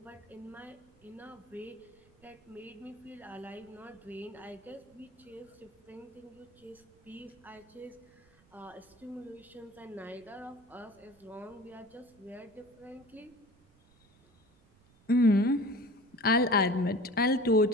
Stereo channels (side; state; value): right; noise; rumble, 29 dB below the sound